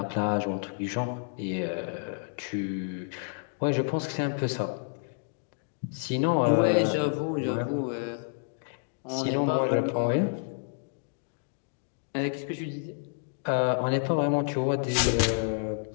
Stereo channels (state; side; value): silent; right; digital silence